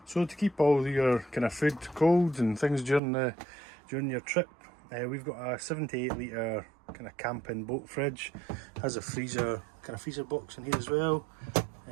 So to keep all your kind of food cold and things during your trip, we've got a 7 to 8 litre kind of camping boat fridge. Has a freezer box in here as well.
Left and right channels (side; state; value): left; drops out; at 3.0 s